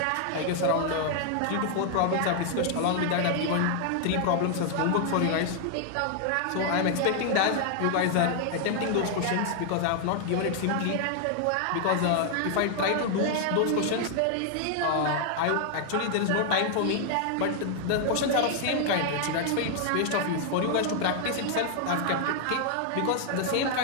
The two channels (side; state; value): both; different; correlation 0.00